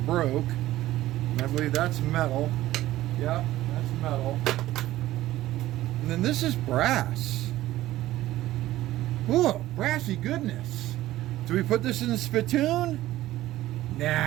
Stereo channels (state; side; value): quieter; left; 15.4 dB